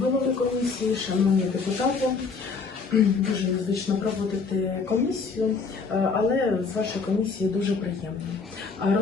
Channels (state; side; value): quieter; right; 4.8 dB